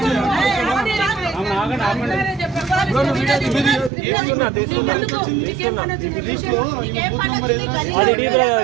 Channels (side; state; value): left; drops out; at 3.9 s